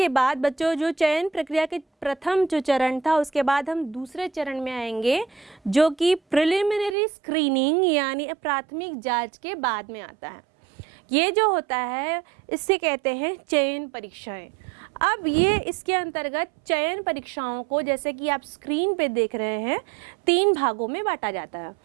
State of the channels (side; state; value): left; drops out; at 7.0 s